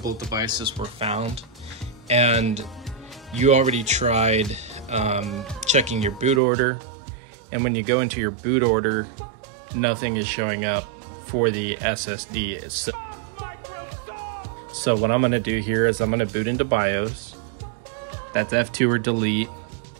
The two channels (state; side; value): drops out; left; at 6.4 s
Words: devices were found, and you already tried checking your boot order, and when you go into your boot order, nothing is showing up for the SSD itself. So what I'm going to do here is I'm going to boot into BIOS. That's F2 or delete.